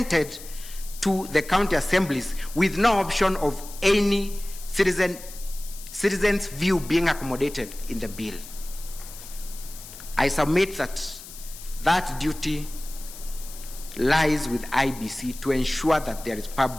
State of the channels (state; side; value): noise; left; hiss, 15 dB below the sound